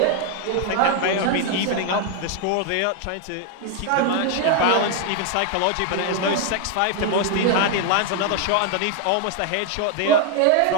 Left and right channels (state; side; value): different; both; correlation 0.00